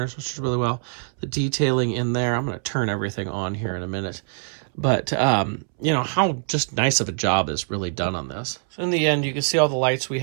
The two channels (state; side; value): silent; left; 63 dB below the other